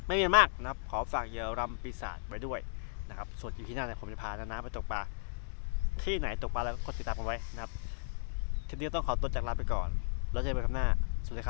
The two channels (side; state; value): right; silent; digital silence